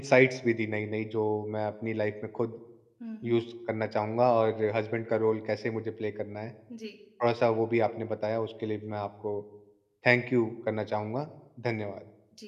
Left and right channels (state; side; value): identical; both; correlation 1.00